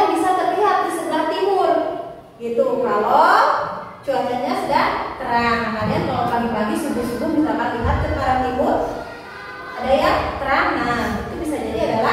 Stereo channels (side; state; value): both; identical; correlation 1.00